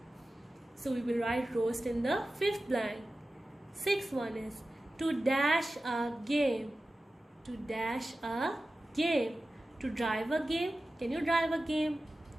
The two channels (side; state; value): both; normal; correlation 0.95